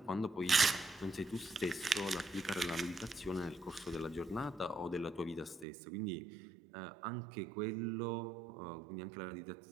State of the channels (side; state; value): left; drops out; at 5.7 s